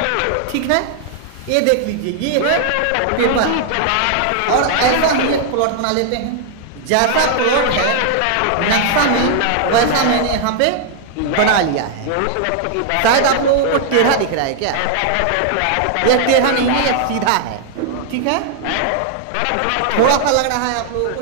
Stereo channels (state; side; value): different; both; correlation 0.00